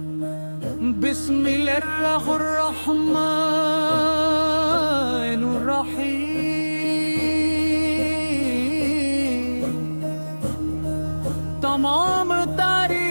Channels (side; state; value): both; inverted; correlation -1.00